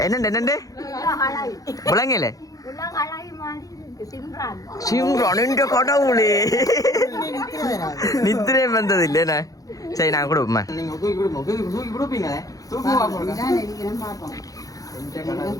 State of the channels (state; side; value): late; right; 0.17 ms